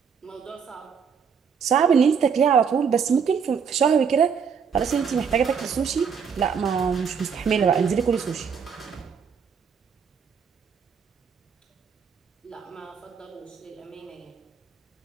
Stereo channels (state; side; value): quieter; left; 6.5 dB